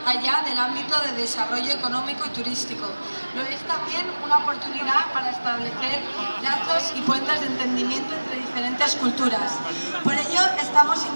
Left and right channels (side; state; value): both; inverted; correlation -1.00